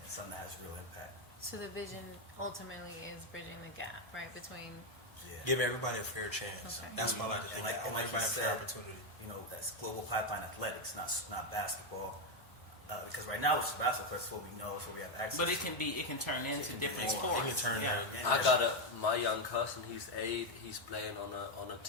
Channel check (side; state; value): both; normal; correlation 0.05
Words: something that has real impact. So the vision ultimately is bridging the gap, right, between... Give everybody a fair chance. Okay. That's what I like to think. I want everybody a fair opportunity. You know, that's global pipeline athletics, not basketball. Because right now it's basketball, that's what we know, it's what we have access to. But it can turn into different sports. It can turn I got my young cousin, he's 8, he's playing on a